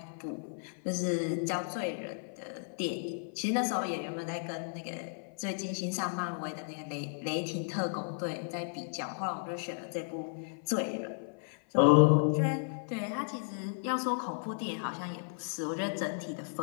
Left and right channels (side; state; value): right; silent; 55 dB below the other